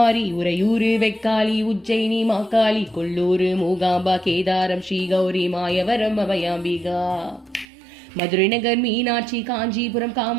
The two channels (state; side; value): drops out; left; at 7.7 s